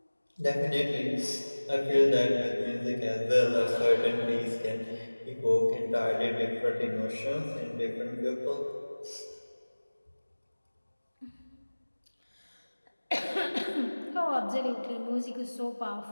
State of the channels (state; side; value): inverted; both; correlation -1.00